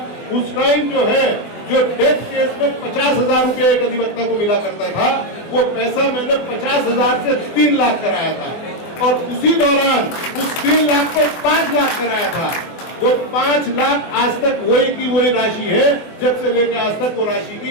उस टाइम जो है, जो डेथ केस में 50,000 रुपये एक अधिवक्ता को मिला करता था, वो पैसा मैंने 50,000 से 3 लाख कराया था और उसी दौरान उस 3 लाख को 5 लाख कराया था। वो 5 लाख आज तक वही की वही राशि है, जब से लेकर आज तक वो राशि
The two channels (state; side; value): late; right; 24 ms